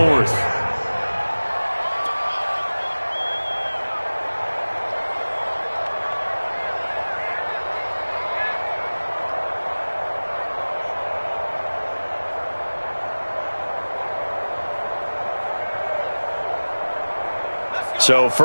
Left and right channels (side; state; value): both; inverted; correlation -1.00